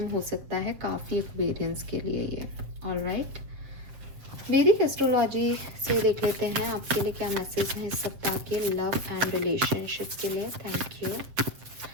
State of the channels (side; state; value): left; late; 7.6 ms